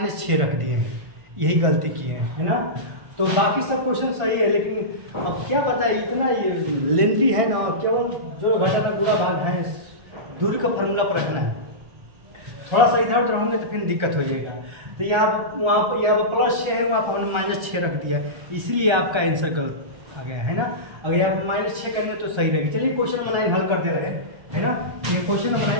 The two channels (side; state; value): left; late; 1.3 ms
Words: रख दिए हैं। यही गलती किए हैं, है ना। तो बाकी सब क्वेश्चन सही है, लेकिन अब क्या पता है, इतना ये लेंथी है ना, केवल जो घटाना गुणा भाग है दूरी का फार्मूला पर रखना है। थोड़ा सा इधर उधर होंगे तो फिर दिक्कत हो जाएगा। तो यहाँ पर +6 है, वहाँ पर हमने -6 रख दिया है, इसलिए आपका आंसर गलत आ गया है ना। अगर यहाँ पर -6 करेंगे तो सही रहेगा। चलिए क्वेश्चन नंबर 9 हल कर दे रहे हैं, है ना। ये क्वेश्चन नंबर